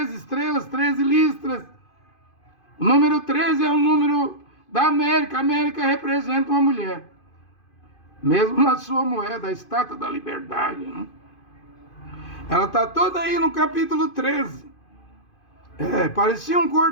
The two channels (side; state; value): right; late; 2.5 ms